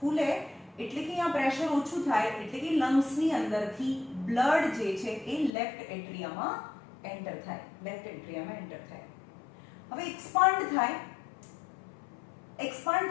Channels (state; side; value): drops out; right; at 5.5 s